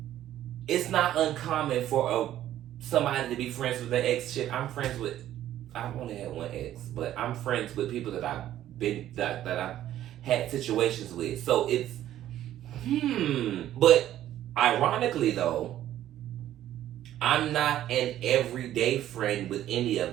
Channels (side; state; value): left; quieter; 12.5 dB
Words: it's not uncommon for somebody to be friends with their ex. Shit, I've only had one ex, but I'm friends with people that I've had situations with. So it's, but ironically though, I'm not an everyday friend with any